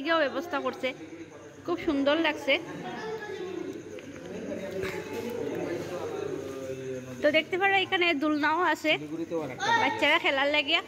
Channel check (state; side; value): identical; both; correlation 1.00